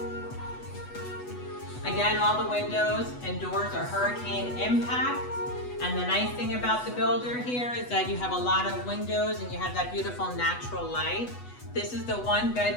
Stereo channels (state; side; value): late; right; 8.1 ms